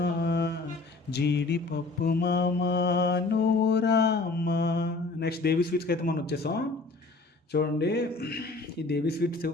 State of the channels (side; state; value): right; quieter; 3.5 dB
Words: జీడిపప్పు మామ నువ్వు రామ. నెక్స్ట్ దేవి స్వీట్స్కి అయితే మనం వచ్చేసాం. చూడండి ఈ దేవి స్వీట్స్